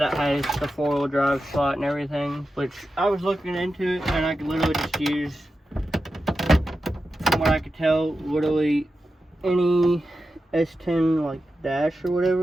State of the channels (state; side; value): normal; both; correlation 0.91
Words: has the 4-wheel drive slot and everything, which I was looking into it, and I could literally just use, from what I could tell, literally any S10 like dash or